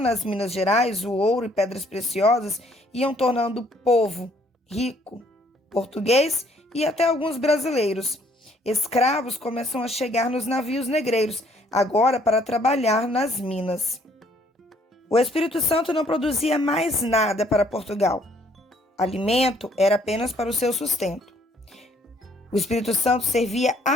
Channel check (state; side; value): normal; both; correlation 0.63